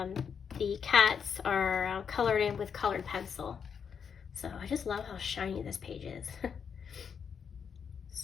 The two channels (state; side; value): quieter; right; 6.9 dB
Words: cats are colored in with colored pencil. So I just love how shiny this page is.